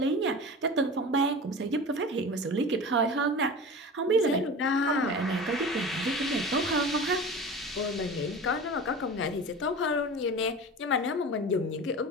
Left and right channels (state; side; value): normal; both; correlation 0.33